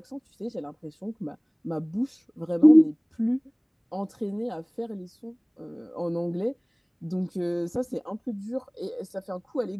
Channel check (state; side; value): identical; both; correlation 1.00